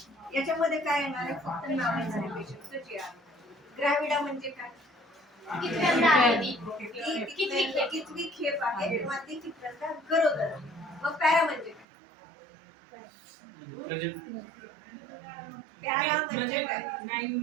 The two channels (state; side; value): drops out; left; at 11.9 s